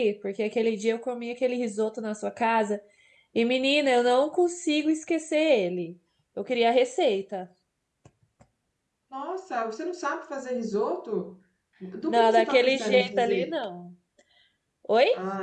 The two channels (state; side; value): identical; both; correlation 1.00